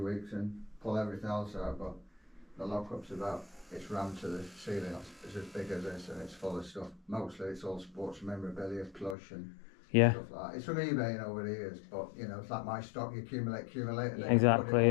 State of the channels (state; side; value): drops out; right; at 9.2 s